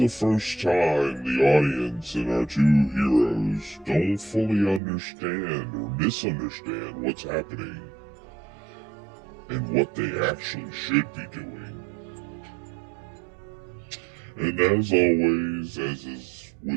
first time the audience and our two heroes don't fully understand or misunderstand what's happening and what they actually should be doing. And as always, as is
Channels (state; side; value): drops out; left; at 4.8 s